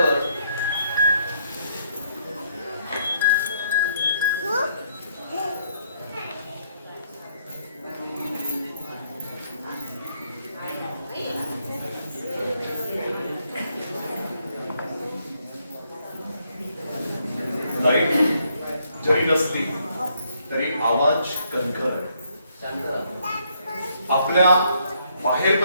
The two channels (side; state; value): both; inverted; correlation -0.72